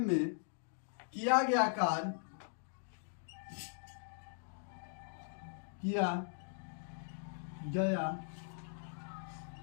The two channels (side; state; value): right; silent; digital silence